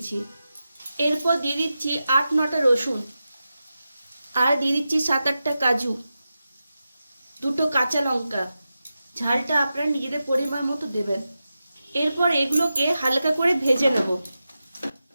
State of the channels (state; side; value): inverted; both; correlation -0.92